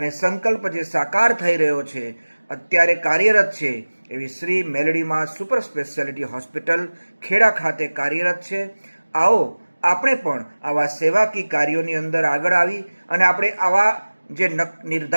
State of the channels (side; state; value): both; inverted; correlation -1.00